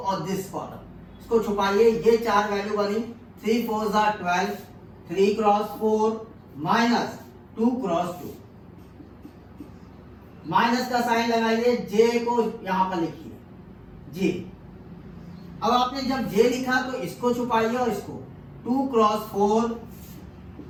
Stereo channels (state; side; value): identical; both; correlation 1.00